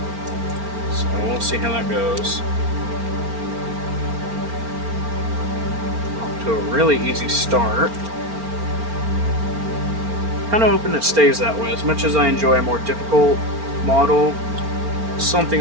So we'll see how that goes. Off to a really easy start. Kind of hoping it stays that way. As much as I enjoy a more difficult model,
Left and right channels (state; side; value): late; left; 4.4 ms